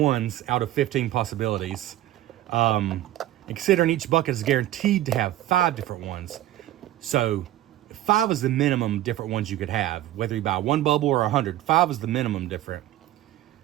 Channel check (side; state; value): left; quieter; 14.1 dB